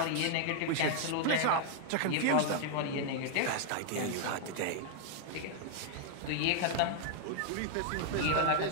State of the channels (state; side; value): different; both; correlation -0.01